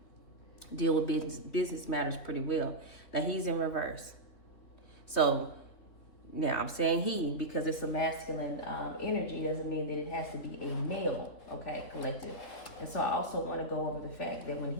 deal with business matters pretty well. Now, he's in reverse. So, now, I'm saying he because it's a masculine energy doesn't mean that it has to be a male, okay, collective. And so I also want to go over the fact that when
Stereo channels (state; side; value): late; right; 3.6 ms